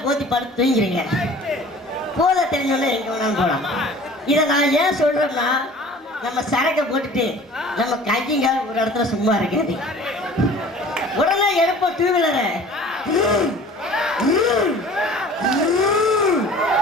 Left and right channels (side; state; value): both; normal; correlation 0.46